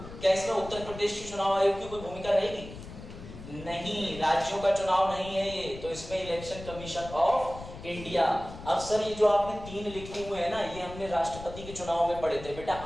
क्या इसमें उत्तर प्रदेश के चुनाव आयोग की कोई भूमिका रहेगी? नहीं, राज्यों का चुनाव नहीं है ये, तो इसमें इलेक्शन कमीशन ऑफ इंडिया। अब सर ये जो आपने 3 लिखे हुए हैं ना, ये हमने राष्ट्रपति के चुनाव में पढ़े थे। बेटा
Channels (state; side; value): noise; left; rumble, 13 dB below the sound